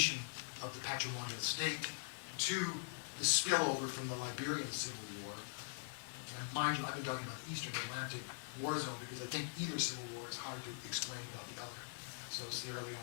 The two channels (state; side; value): silent; right; digital silence